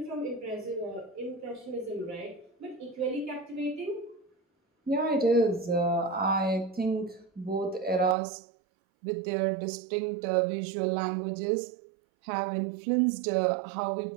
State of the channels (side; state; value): left; drops out; at 8.2 s